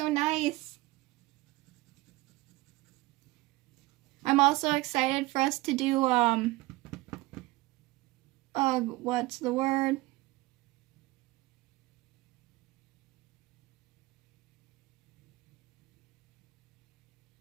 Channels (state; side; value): quieter; left; 20.8 dB